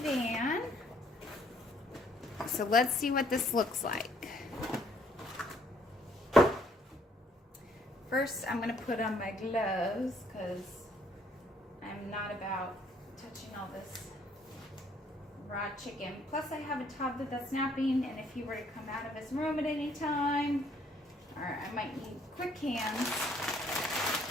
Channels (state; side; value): normal; both; correlation 0.65